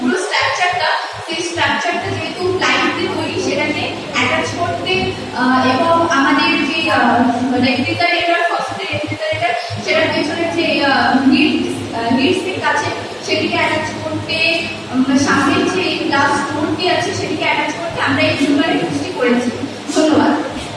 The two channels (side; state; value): both; identical; correlation 1.00